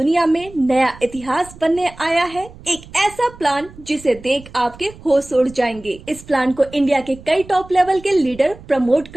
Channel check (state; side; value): noise; right; rumble, 20 dB below the sound